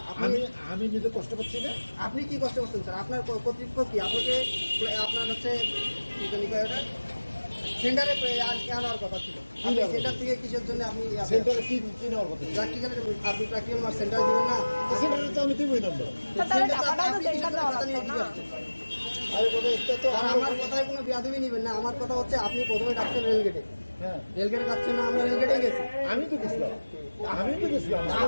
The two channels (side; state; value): both; inverted; correlation -1.00